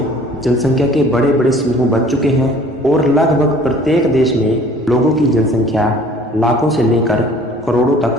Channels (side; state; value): both; normal; correlation 0.51